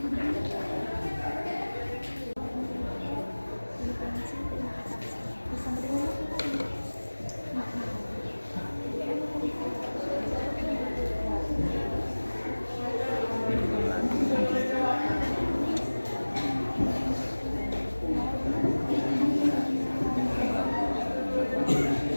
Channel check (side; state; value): both; inverted; correlation -1.00